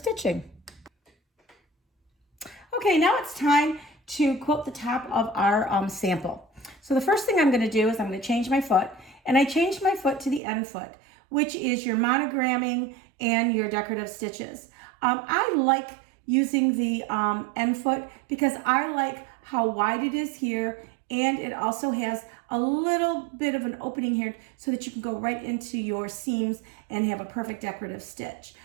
Okay, now it's time to quilt the top of our sample. So the first thing I'm going to do is I'm going to change my foot, and I changed my foot to the end foot, which is your monogramming and your decorative stitches. I like using the end foot because I like how wide it is here, and it also has a little bit of an opening here so that you can go right into your seams and have a perfect decorative stitch.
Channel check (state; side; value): drops out; left; at 10.4 s